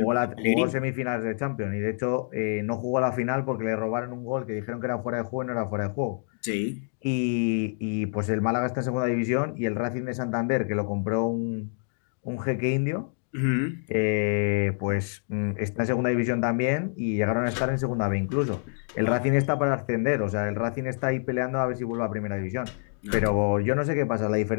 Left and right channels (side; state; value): right; silent; digital silence